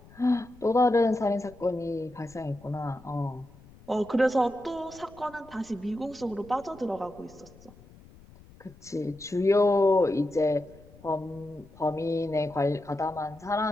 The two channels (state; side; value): noise; left; rumble, 23 dB below the sound